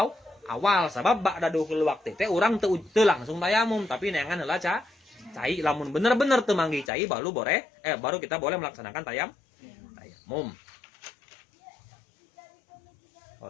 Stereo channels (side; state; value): right; drops out; at 6.9 s